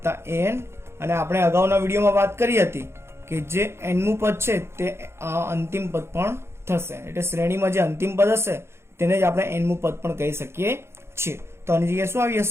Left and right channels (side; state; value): left; late; 0.12 ms